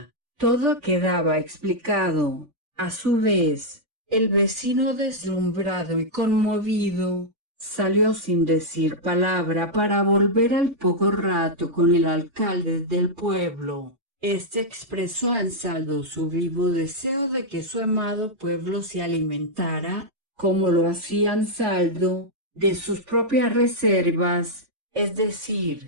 Todo quedaba explicado. A su vez, el vecino, deslumbrado y conmovido, salió sin decir palabra para volver al poco rato con el alcalde del pueblo. Este expresó a Ansaldo su vivo deseo de que su amado pueblo se alimentara, como lo hacía Ansaldo, de sus propias reservas, es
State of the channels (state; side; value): late; left; 3.5 ms